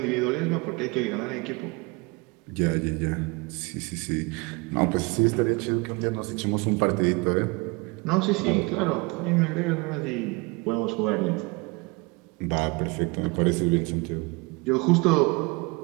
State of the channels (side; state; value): left; quieter; 26.8 dB